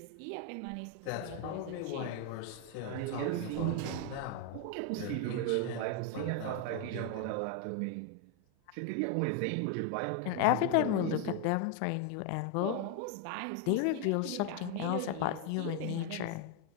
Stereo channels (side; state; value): both; different; correlation 0.01